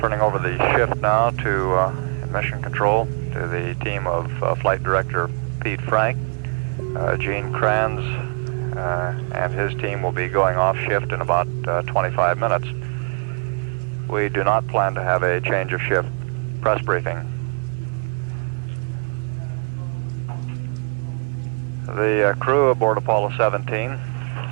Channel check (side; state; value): left; quieter; 37.1 dB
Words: over the shift now to Mission Control, to the team of Flight Director Pete Frank. Gene Kranz and his team will be going off shift in about 25 minutes. We do not plan to have a change of shift press briefing. The crew aboard Apollo 17